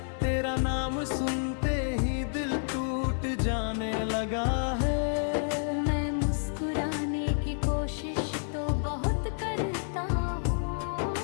तेरा नाम सुनते ही दिल टूट जाने लगा है। मैं मुस्कुराने की कोशिश तो बहुत करता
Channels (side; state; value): right; silent; digital silence